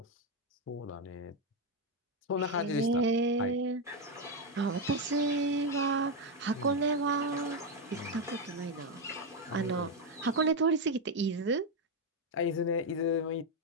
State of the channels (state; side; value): normal; both; correlation 0.05